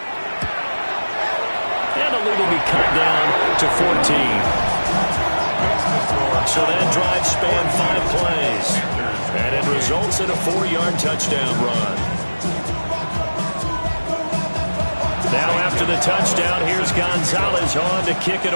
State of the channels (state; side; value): inverted; both; correlation -1.00